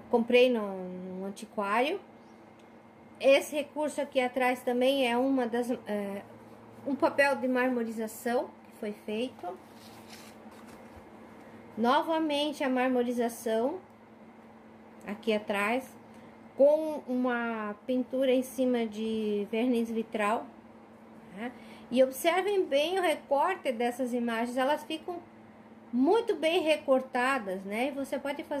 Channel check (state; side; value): identical; both; correlation 1.00